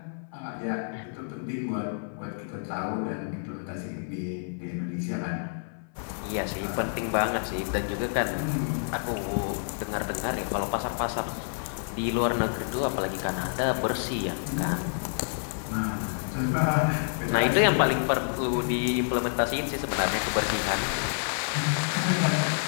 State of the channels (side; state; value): right; silent; 59 dB below the other